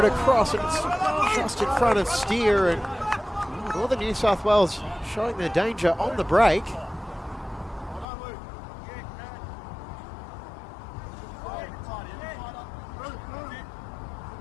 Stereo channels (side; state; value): right; drops out; at 8.1 s